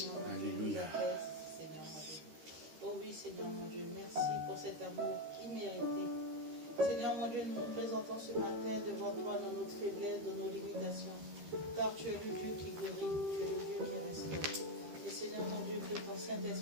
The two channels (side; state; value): left; late; 13 ms